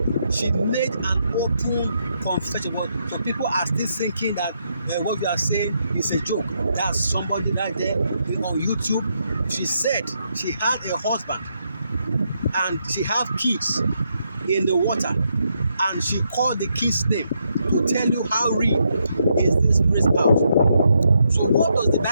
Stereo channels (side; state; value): both; inverted; correlation -0.79